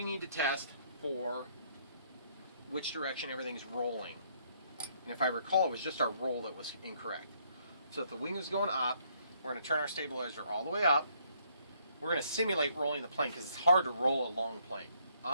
need to test for which direction everything's rolling. And if I recall, it was just our roll that was incorrect. So if the wing is going up, we're going to turn our stabilizer all the way up. We're going to simulate rolling the plane because it's hard to roll a long plane.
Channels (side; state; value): both; inverted; correlation -0.68